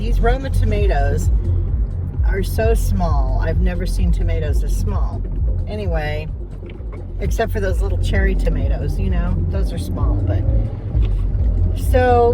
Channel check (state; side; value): identical; both; correlation 1.00